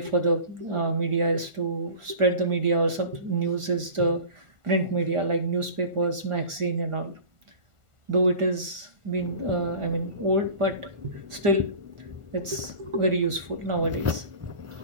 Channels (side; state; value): left; late; 1.4 ms